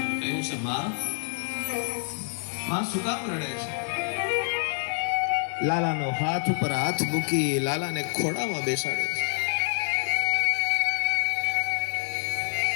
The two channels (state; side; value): silent; right; 55 dB below the other